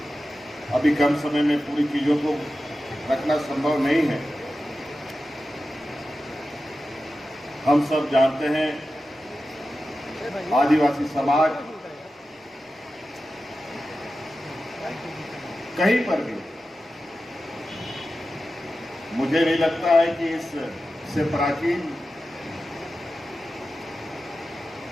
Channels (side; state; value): both; normal; correlation 0.93